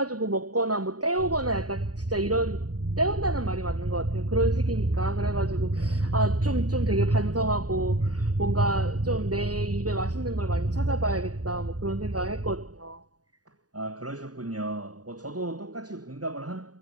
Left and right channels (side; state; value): left; late; 0.68 ms